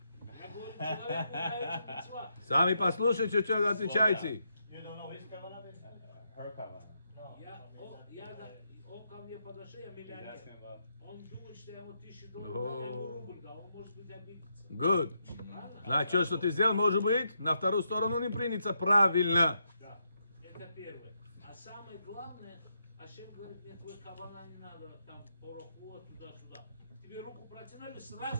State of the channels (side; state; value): both; inverted; correlation -0.81